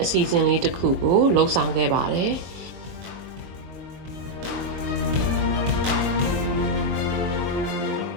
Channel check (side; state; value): left; late; 22 ms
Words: အစီအစဉ်လေးတစ်ခုကိုလှုပ်ဆောင်ခဲ့ပါတယ်